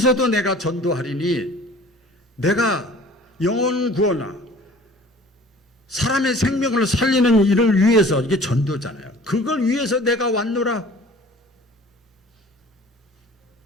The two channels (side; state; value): both; normal; correlation 0.48